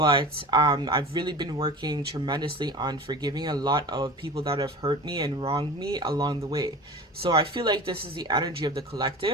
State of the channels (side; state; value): both; normal; correlation 0.35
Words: I've really been working tremendously on forgiving a lot of people that have hurt me and wronged me along the way. So I feel like this is the energy of the